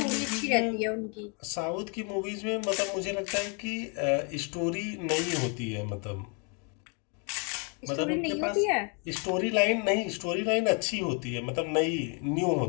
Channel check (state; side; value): quieter; right; 36.5 dB